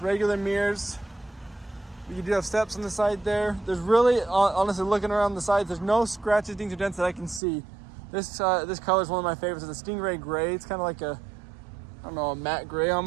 regular mirrors. You do have steps on the side there. There's really, honestly, looking around the sides, there's no scratches, dings, or dents that I can see. This color is one of my favorites. It's a Stingray gray. It's kind of like a, I don't know, a matte gray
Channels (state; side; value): drops out; left; at 7.4 s